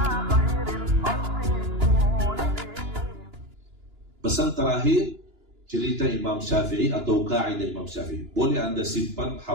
terakhir, cerita Imam Syafi'i atau kaidah Imam Syafi'i. Boleh anda simpan,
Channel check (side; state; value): left; late; 2.9 ms